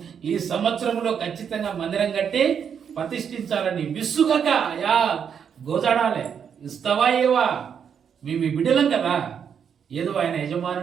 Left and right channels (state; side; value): quieter; left; 7.5 dB